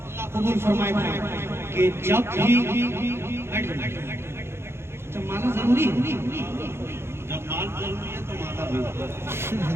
अल्लाह कबूल फरमाए कि जब भी जब माना जरूरी है, जब माल जरूरी है तो माता भी।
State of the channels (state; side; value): late; left; 0.12 ms